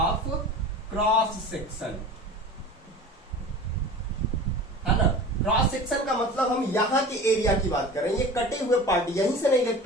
cross section, है ना। क्रॉस सेक्शन का मतलब हम यहाँ के एरिया की बात कर रहे हैं, ये कटे हुए पार्ट, यहीं से ना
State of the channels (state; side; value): normal; both; correlation 0.38